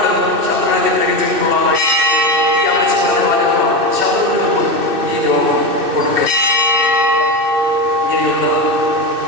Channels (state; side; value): late; left; 2.6 ms